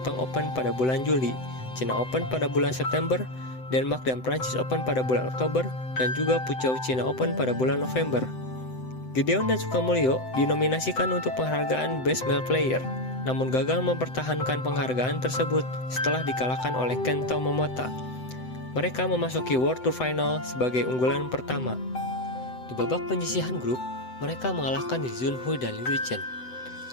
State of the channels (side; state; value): right; late; 7.9 ms